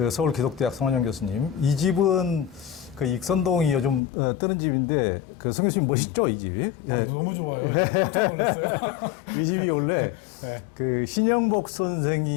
서울기독대학 손원영 교수님. 이 집은 그 익선동이 요즘 뜨는 집인데 그 성 교수님 멋있죠, 이 집이? 아, 너무 좋아요. 깜짝 놀랐어요. 이 집이 원래 네. 그 신영복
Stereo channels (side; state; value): right; drops out; at 4.0 s